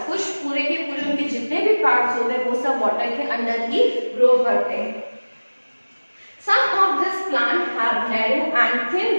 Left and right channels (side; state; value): both; inverted; correlation -1.00